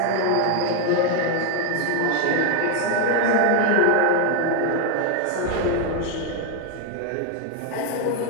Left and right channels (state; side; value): different; both; correlation 0.01